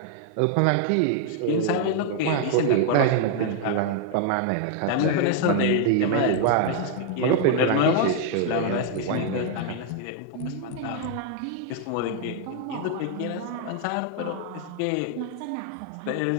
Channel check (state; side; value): different; both; correlation 0.00